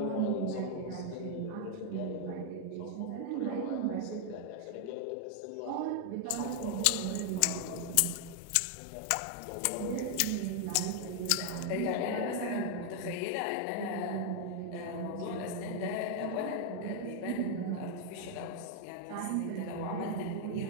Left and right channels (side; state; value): both; different; correlation 0.00